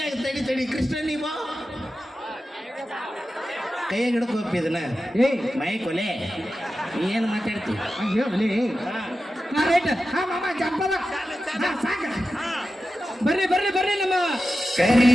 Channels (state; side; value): normal; both; correlation 0.93